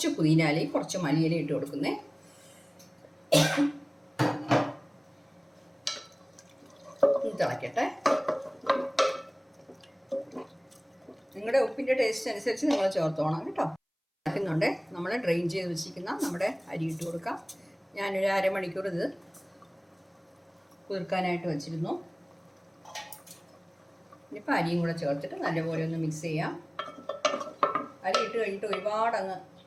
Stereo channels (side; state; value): both; identical; correlation 1.00